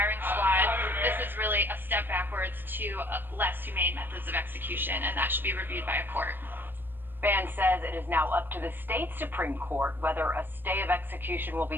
squad, this is really a step backwards to less humane methods of execution, and that should be reviewed by a court. Ban says it is now up to the state Supreme Court whether a stay of execution will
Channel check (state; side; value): late; left; 0.093 ms